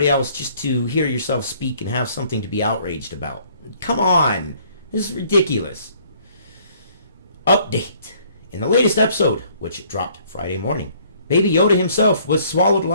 else just to hear yourself speak and have something to be outraged about? Come on. This is ridiculous. Update. In the latest episode, which dropped Friday morning, Baby Yoda himself was swallowed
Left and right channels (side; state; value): both; inverted; correlation -0.61